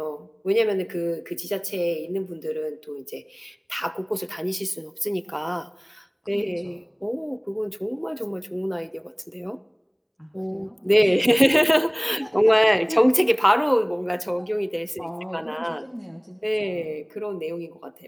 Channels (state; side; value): identical; both; correlation 1.00